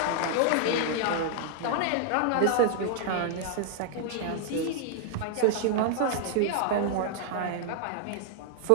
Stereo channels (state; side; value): different; both; correlation -0.01